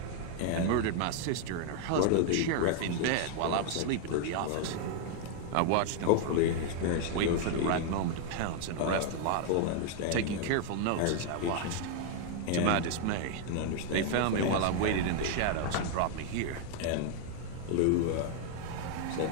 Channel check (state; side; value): different; both; correlation 0.00